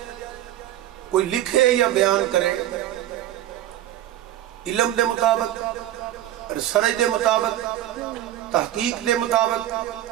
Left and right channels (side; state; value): left; quieter; 13.1 dB